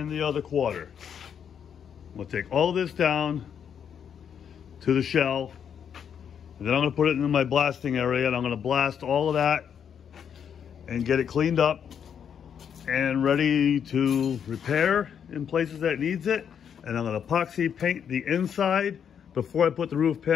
the other quarter. I'm gonna take all of this down to the shell. And then I'm going to put it in my blasting area, and I'm going to blast all of that and get it cleaned up and ready to repair in places that it needs it. And I'm going to epoxy paint the inside before I put the roof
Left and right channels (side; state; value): right; quieter; 8.0 dB